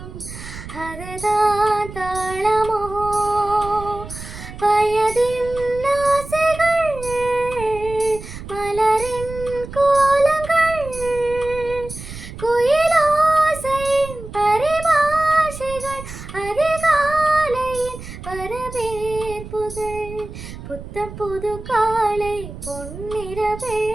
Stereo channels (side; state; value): right; noise; rumble, 12 dB below the sound